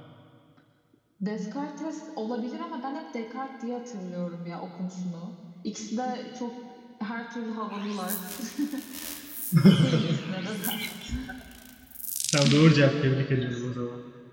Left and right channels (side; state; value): both; identical; correlation 1.00